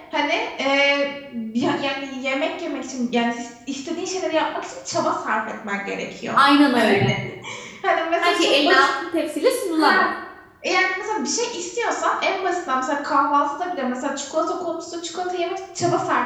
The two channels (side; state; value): both; identical; correlation 1.00